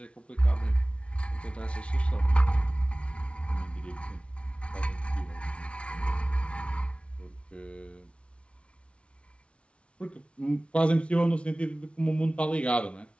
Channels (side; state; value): right; late; 0.060 ms